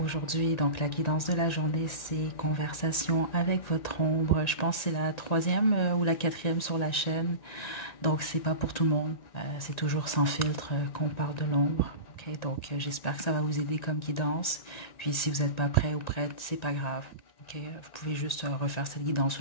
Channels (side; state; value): right; late; 1.9 ms